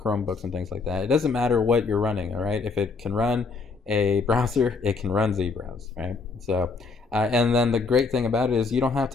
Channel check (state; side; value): quieter; right; 4.4 dB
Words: and things like that. It doesn't matter what you're running, all right? If it can run a browser, it can run zBrowse, right? So, and then the great thing about it is you don't have